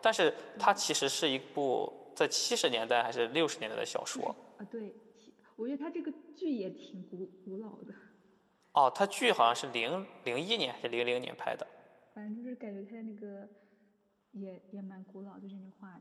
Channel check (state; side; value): identical; both; correlation 1.00